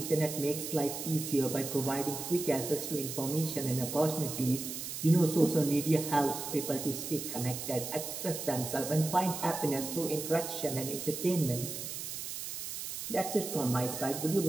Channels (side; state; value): right; noise; hiss, 6 dB below the sound